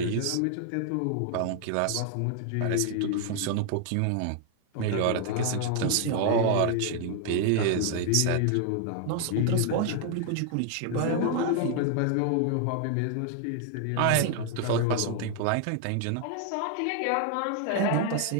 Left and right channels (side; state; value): both; different; correlation 0.00